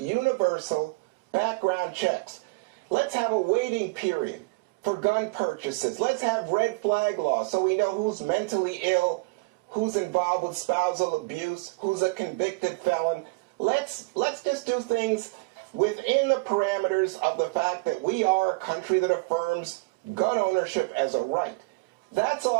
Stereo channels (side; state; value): left; quieter; 27.7 dB